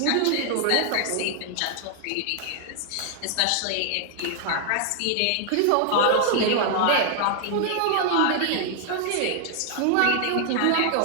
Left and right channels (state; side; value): different; both; correlation -0.01